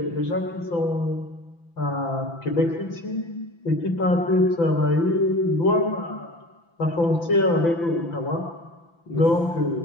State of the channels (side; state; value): right; late; 5.9 ms